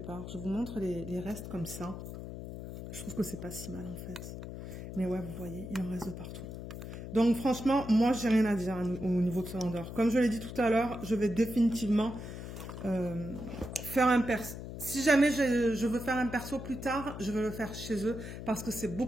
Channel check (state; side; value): noise; left; hum, 9 dB below the sound